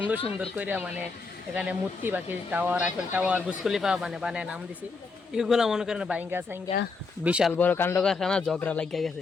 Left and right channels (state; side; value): quieter; right; 4.3 dB